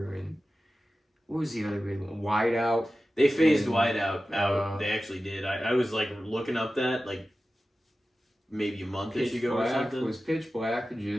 and what was the other big one? Whiteout. They phased Whiteout out. They actually did. I was like looking up that like maybe a month-ish ago or something. Was Pitch Black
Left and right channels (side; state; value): both; normal; correlation 0.94